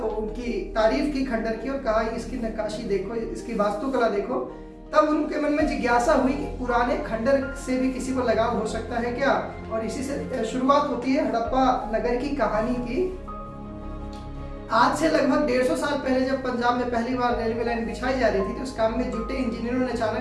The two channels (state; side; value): identical; both; correlation 1.00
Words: उनकी तारीफ की खंडर की और कहा इसकी नक्काशी देखो, इसकी वास्तुकला देखो। तब उनके मन में जिज्ञासा हुई कि पुराने खंडर से भी किसी को लगाव हो सकता है क्या। और इसी से शुरुआत होती है हड़प्पा नगर की कहानी की। आज से लगभग 150 साल पहले जब पंजाब में पहली बार रेलवे लाइन बिछाई जा रही थी, तो उस काम में जुटे इंजीनियरों ने